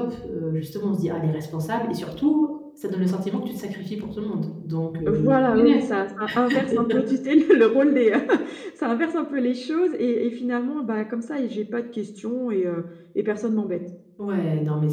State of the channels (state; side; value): identical; both; correlation 1.00